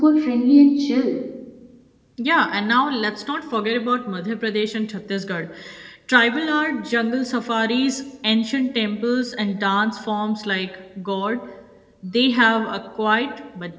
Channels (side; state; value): both; identical; correlation 1.00